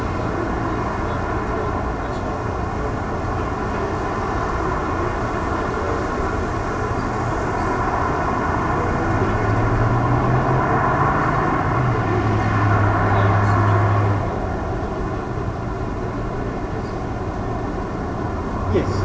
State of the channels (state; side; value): identical; both; correlation 1.00